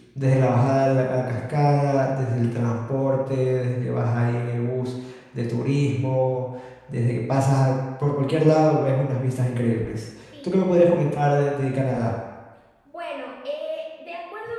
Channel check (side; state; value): both; identical; correlation 1.00